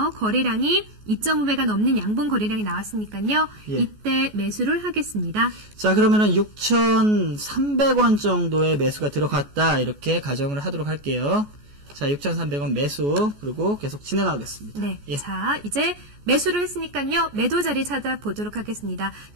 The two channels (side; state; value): left; late; 14 ms